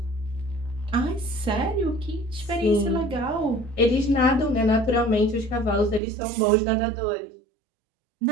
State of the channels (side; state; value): left; drops out; at 6.0 s